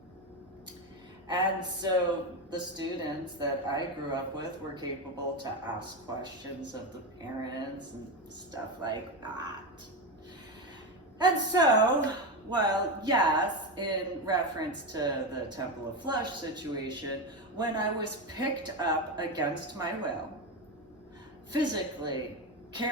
And so the students that I grew up with were capable to ask questions of the parents and stuff like that. And so, well, yes, in reference to the Temple of Flesh situation, when I was picked up against my will, physically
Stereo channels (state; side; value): normal; both; correlation 0.15